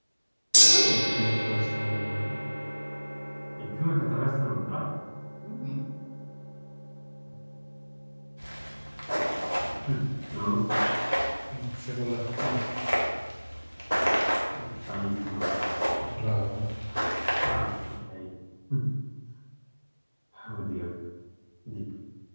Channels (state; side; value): inverted; both; correlation -1.00